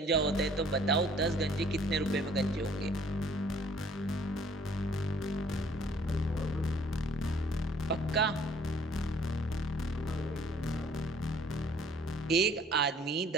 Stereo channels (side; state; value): both; normal; correlation 0.57